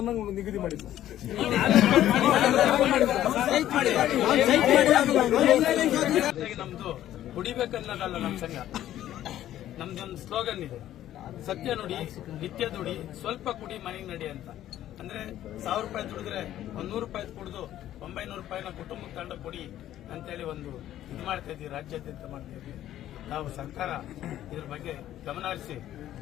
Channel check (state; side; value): quieter; right; 12.6 dB